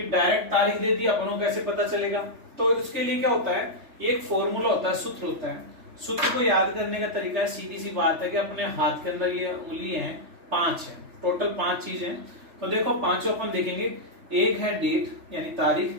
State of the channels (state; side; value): late; left; 3.3 ms